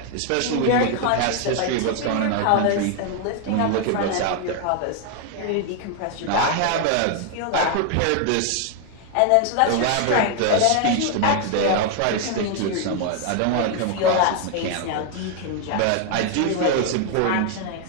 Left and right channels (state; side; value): different; both; correlation 0.00